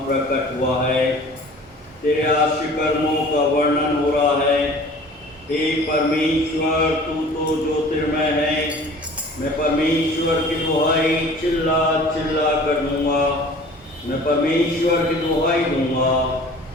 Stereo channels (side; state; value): both; normal; correlation 0.46